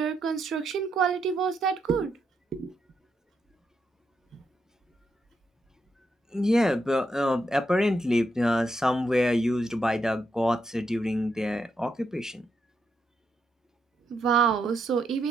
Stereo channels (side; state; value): both; normal; correlation 0.81